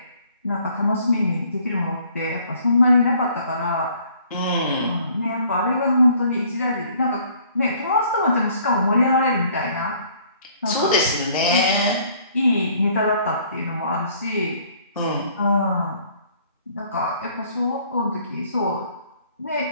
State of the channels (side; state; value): both; inverted; correlation -0.59